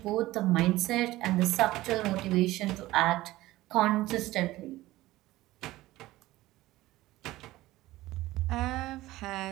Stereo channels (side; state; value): left; quieter; 17.2 dB